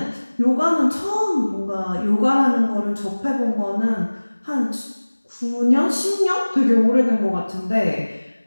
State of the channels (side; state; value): both; inverted; correlation -1.00